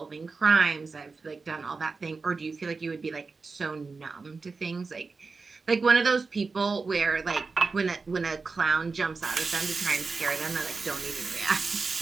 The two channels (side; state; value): left; quieter; 4.3 dB